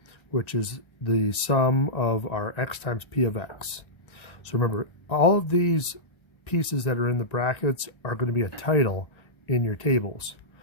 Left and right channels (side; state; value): right; late; 1.3 ms